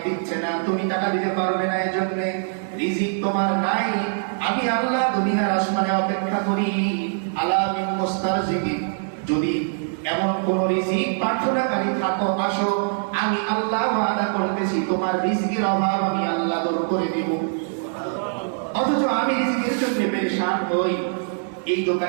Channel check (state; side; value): silent; left; digital silence